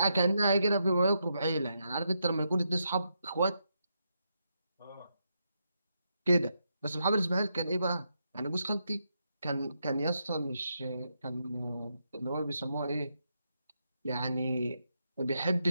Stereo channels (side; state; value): both; inverted; correlation -0.82